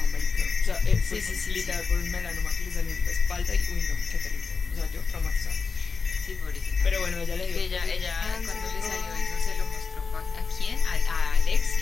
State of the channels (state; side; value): quieter; right; 4.9 dB